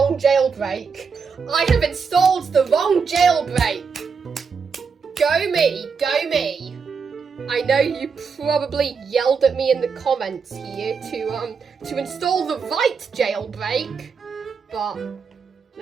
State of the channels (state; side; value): quieter; left; 5.6 dB